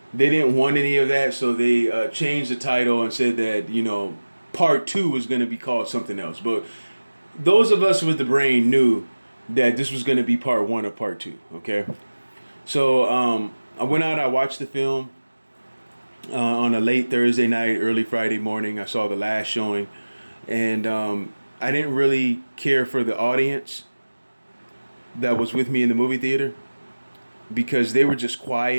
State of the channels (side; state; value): both; inverted; correlation -1.00